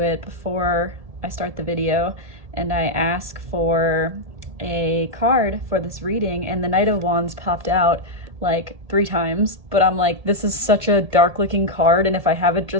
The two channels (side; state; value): left; late; 1.8 ms